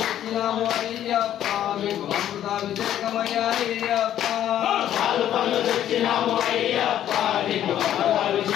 అయ్యప్ప మీకు అమృతాభిషేకమయ్యా అయ్యప్ప పాలు పళ్ళు తెచ్చినాము అయ్యప్ప నీకు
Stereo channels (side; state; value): right; quieter; 11.2 dB